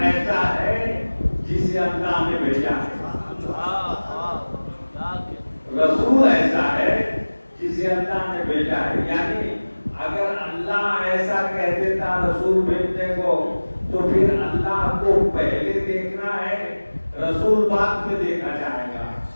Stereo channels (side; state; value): both; inverted; correlation -1.00